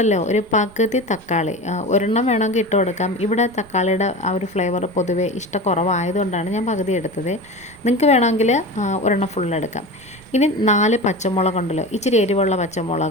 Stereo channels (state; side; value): noise; right; rumble, 25 dB below the sound